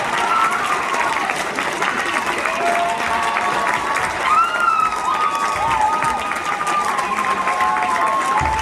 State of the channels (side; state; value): both; identical; correlation 1.00